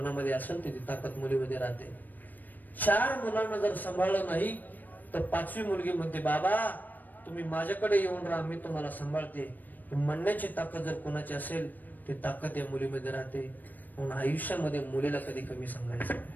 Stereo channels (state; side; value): late; right; 0.087 ms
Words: असेल तर ती ताकद मुलीमध्ये राहते. 4 मुलांना जर सांभाळलं नाही तर 5वी मुलगी म्हणते बाबा तुम्ही माझ्याकडे येऊन राहा, मी तुम्हाला सांभाळते. म्हणण्याची ताकद जर कोणाची असेल ती ताकद या मुलीमध्ये राहते. म्हणून आयुष्यामध्ये मुलीला कधी कमी सांगायचं